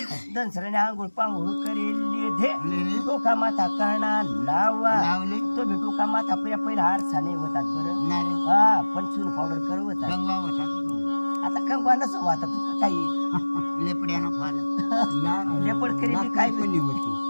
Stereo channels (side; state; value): both; inverted; correlation -1.00